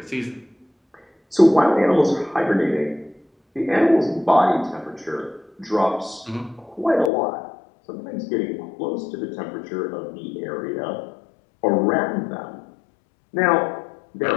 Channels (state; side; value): drops out; right; at 7.1 s